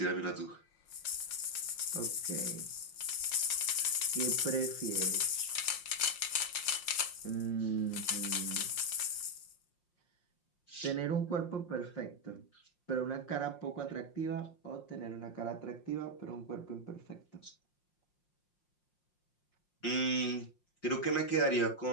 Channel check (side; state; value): right; late; 5.6 ms